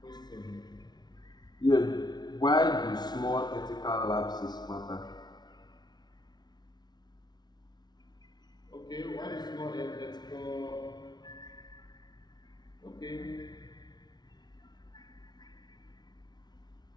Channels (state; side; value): late; right; 0.20 ms